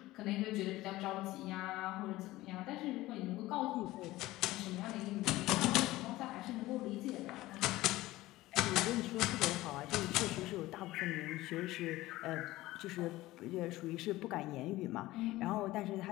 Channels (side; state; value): right; quieter; 17.6 dB